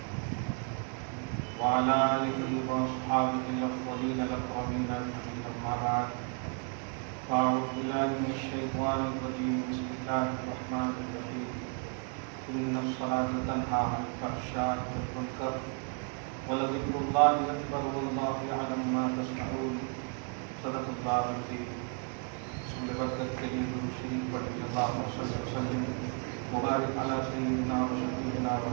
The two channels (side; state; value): left; quieter; 39.4 dB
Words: وعلى آلہ واصحابہ الافضلین الاکرمین اجمعین، اما بعد فاعوذ باللہ من الشیطان الرجیم، بسم اللہ الرحمن الرحیم۔ ان الصلاة تنہی عن الفحشاء والمنکر ولذکر اللہ اکبر واللہ یعلم ما تصنعون۔ صدق اللہ العظیم۔ رسول برکت کے لیے درود شریف پڑھیں۔ اللہم صلی وسلم مبارک علی سیدنا و شفیعنا و